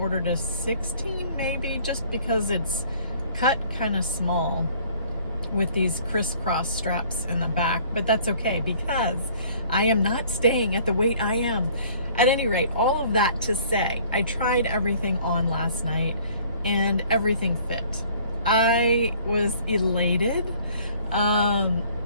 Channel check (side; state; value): both; inverted; correlation -0.55